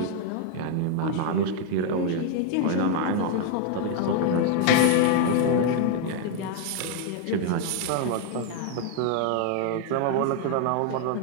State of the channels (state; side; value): different; both; correlation 0.00